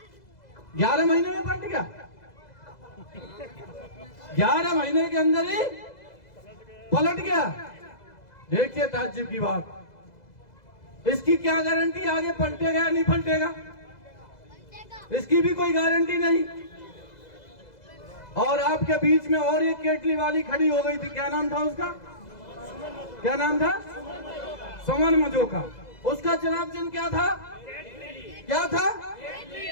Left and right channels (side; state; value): right; late; 2.0 ms